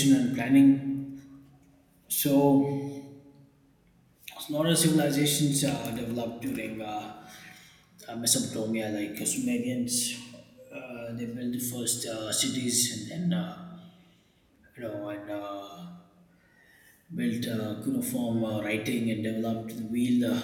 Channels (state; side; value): identical; both; correlation 1.00